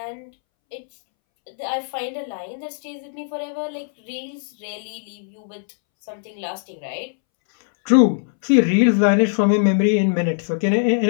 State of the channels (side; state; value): right; silent; 64 dB below the other